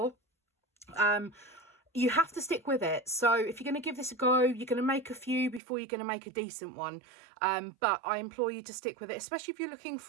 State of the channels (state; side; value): drops out; left; at 5.6 s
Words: you have to stick with it. So if you're going to give this a go, you're going to make a few before you're going to make a decent one. But I implore you to stick with it, especially if you're looking